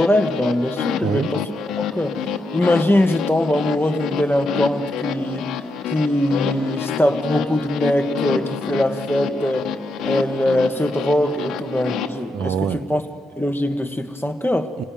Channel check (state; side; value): normal; both; correlation 0.83